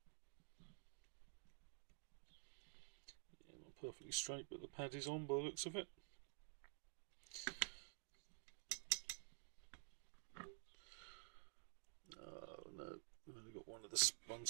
perfectly straight, but the pad is on by the looks of it. Oh no, I've only got one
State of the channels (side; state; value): left; silent; digital silence